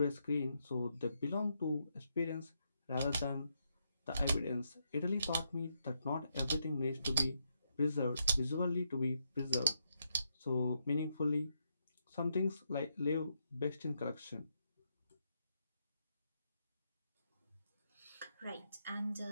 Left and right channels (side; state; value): both; inverted; correlation -0.80